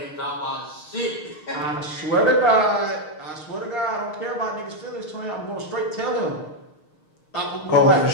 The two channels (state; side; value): late; right; 6.5 ms